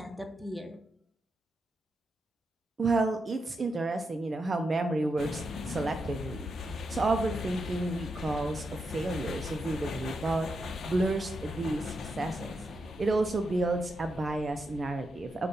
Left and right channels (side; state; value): both; normal; correlation 0.84